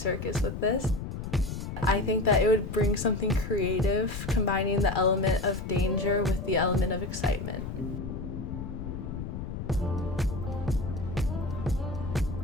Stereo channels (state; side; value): noise; left; rumble, 6 dB below the sound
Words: with this. I think that it would bring something creative, combining the element of danger with the element of excitement.